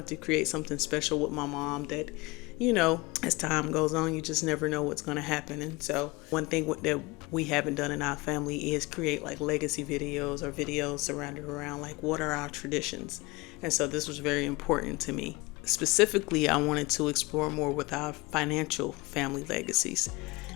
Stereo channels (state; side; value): quieter; right; 23.7 dB